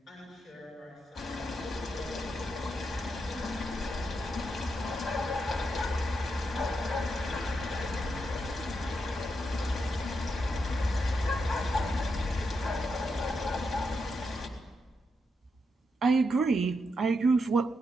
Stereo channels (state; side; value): normal; both; correlation 0.83